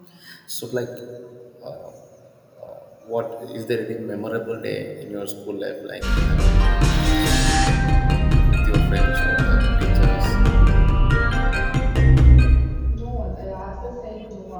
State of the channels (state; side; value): identical; both; correlation 1.00